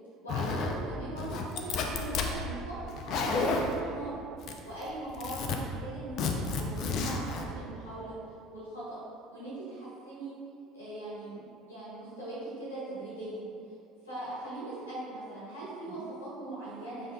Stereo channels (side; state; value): both; normal; correlation 0.44